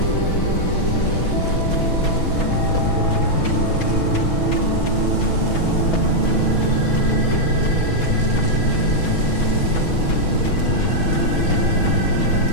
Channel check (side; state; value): right; late; 6.1 ms